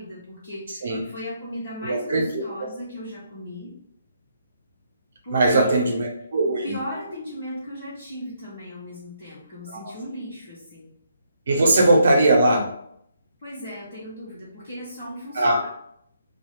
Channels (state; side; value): inverted; both; correlation -0.75